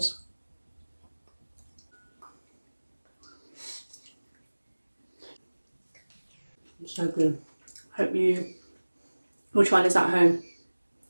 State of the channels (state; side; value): inverted; both; correlation -1.00